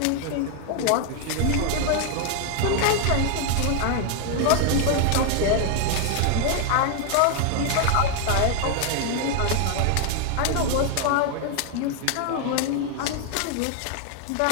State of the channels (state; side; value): different; both; correlation 0.00